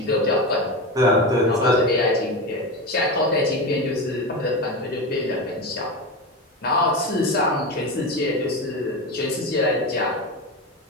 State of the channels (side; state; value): both; normal; correlation 0.21